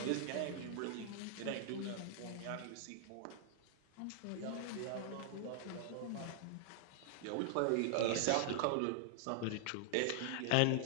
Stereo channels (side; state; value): both; different; correlation -0.01